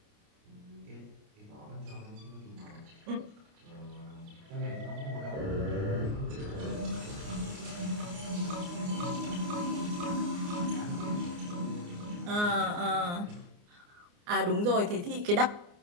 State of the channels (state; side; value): late; left; 29 ms